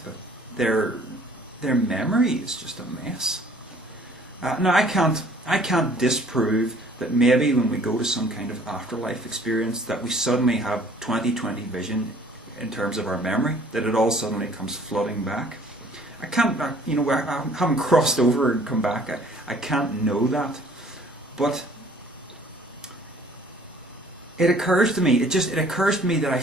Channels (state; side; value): normal; both; correlation 0.55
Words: but their memory is just a mess. Now, I can't disprove that maybe when we go to some kind of afterlife experience that we suddenly have 20/20 vision in terms of our memory, that it all suddenly comes flooding back. I can't, I haven't crossed over and come back. I can't know that. But it occurs to me, it occurs to me that I